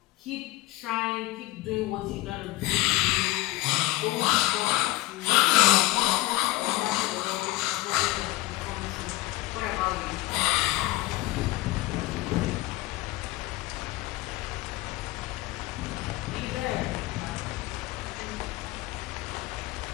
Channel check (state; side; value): quieter; right; 18.8 dB